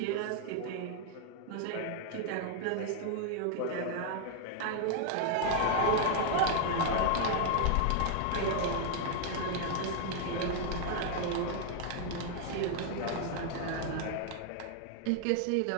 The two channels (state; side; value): different; both; correlation 0.00